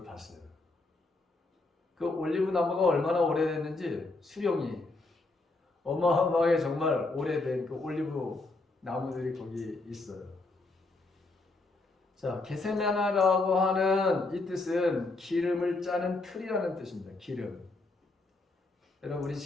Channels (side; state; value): right; quieter; 3.3 dB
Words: 봤어요. 그 올리브 나무가 얼마나 오래됐는지 수령이 어마어마하게 정말 오래된 그 올리브 나무들이 거기 있어요. 자, 겟세마네라고 하는 이 뜻은 기름을 짜는 틀이라는 뜻입니다. 기름. 여러분 우리